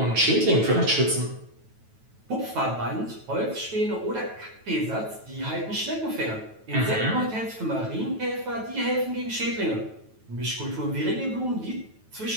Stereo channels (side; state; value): left; late; 9.2 ms